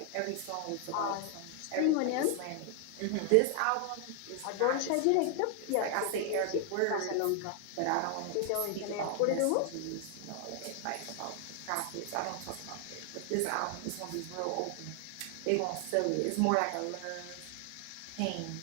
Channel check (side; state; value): both; different; correlation 0.00